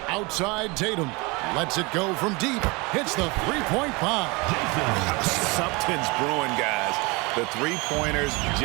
Outside Tatum. Lets it go from deep. Hits the three-point bomb. Something's brewing, guys. The three-pointers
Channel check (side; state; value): left; quieter; 26.7 dB